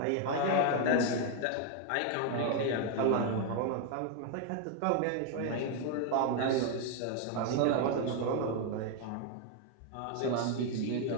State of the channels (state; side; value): different; both; correlation 0.00